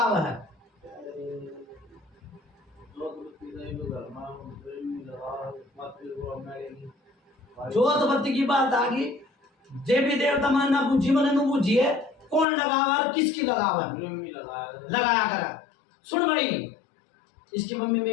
है? जोत बत्ती की बात आ गई। देवी देवता मन ना पूछी मन नु पूछिए कौन लगावा और किसकी लगावा लगाया करा। सुन भाई, इसकी मम्मी में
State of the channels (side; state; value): right; drops out; at 12.5 s